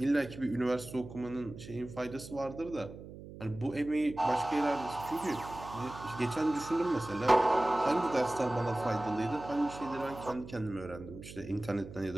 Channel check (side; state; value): right; noise; hum, 14 dB below the sound